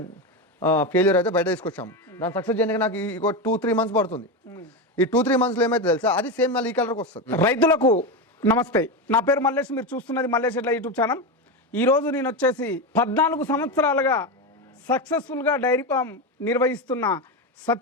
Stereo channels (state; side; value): normal; both; correlation 0.15